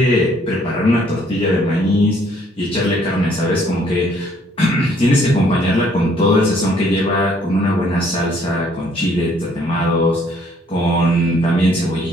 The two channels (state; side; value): normal; both; correlation 0.63